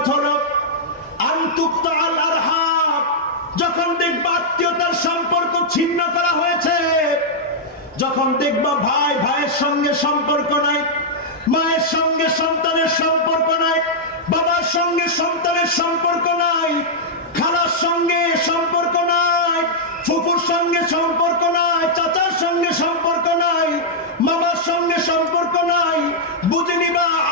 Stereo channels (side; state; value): both; normal; correlation -0.07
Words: হলো আনতুকতাল আরহাম, যখন দেখবা আত্মীয়তার সম্পর্ক ছিন্ন করা হয়েছে, যখন দেখবা ভাই ভাইয়ের সঙ্গে সম্পর্ক নাই, মায়ের সঙ্গে সন্তানের সম্পর্ক নাই, বাবার সঙ্গে সন্তানের সম্পর্ক নাই, খালার সঙ্গে সম্পর্ক নাই, ফুফুর সঙ্গে সম্পর্ক নাই, চাচার সঙ্গে সম্পর্ক নাই, মামার সঙ্গে সম্পর্ক নাই, বুঝে নিবা